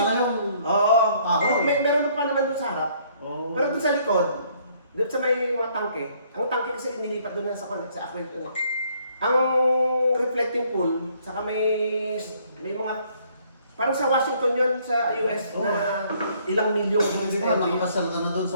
na yung Oo, meron pa naman doon sa harap. Oh. Pero doon sa likod, doon sa may mga tangke, ang tangke kasi nilipat doon sa aquarium. Ang reflecting pool, saka may mga, parang sa Washington yun, sa US, na ilang milyon. Hindi ba, nakapasal ka na doon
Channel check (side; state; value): both; inverted; correlation -0.64